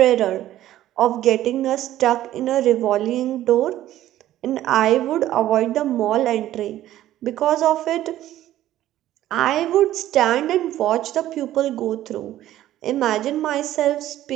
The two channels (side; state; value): left; quieter; 13.5 dB